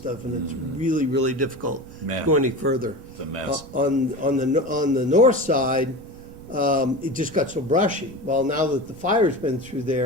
and it's really, really difficult to go any further. It's a mess. On the north side, it just got so brushy. Well, now that the fire's been through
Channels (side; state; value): right; noise; rumble, 20 dB below the sound